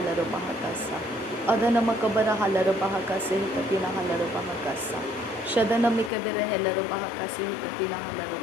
bahakasa. Adana makabara halara bahakase katina halara bahakasa. Shadana mikabara halara bahakase katina halara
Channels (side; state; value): right; drops out; at 6.1 s